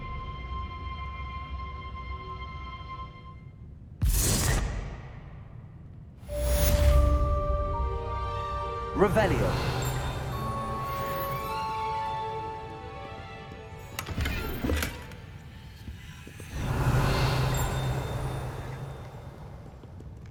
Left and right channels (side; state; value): both; identical; correlation 1.00